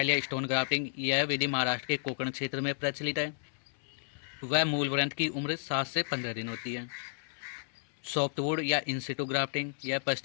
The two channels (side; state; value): right; silent; 56 dB below the other